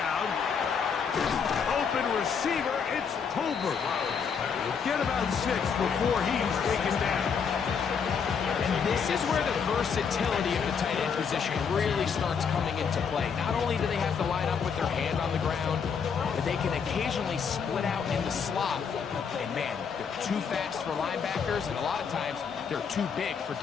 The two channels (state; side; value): quieter; right; 6.4 dB